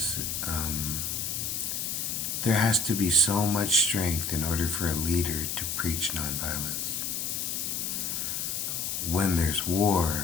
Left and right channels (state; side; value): noise; left; hiss, 2 dB below the sound